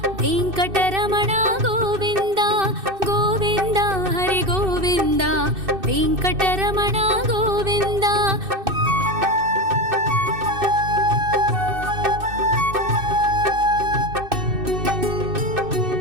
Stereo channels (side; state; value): left; late; 2.6 ms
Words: వెంకటరమణ గోవింద గోవింద హరి గోవింద వెంకటరమణ గోవింద